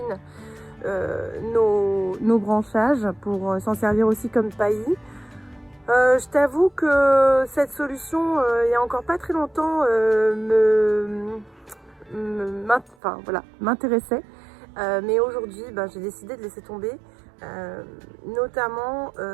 nos branchages pour s'en servir aussi comme paillis. Je t'avoue que cette solution, il y a encore pas très longtemps, m'intéressait. Mais aujourd'hui, j'ai décidé de laisser tomber, notamment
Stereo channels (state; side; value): drops out; left; at 13.0 s